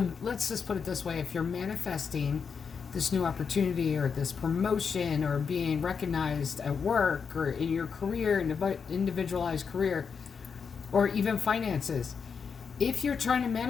let's just put it this way, if you're manifesting this new opportunity or this promotion or being recognized at work or in your career, individualized career, or even finances, if you're trying to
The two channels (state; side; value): quieter; right; 6.0 dB